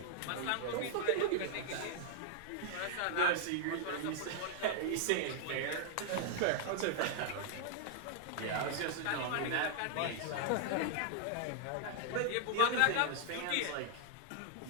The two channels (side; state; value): both; different; correlation -0.01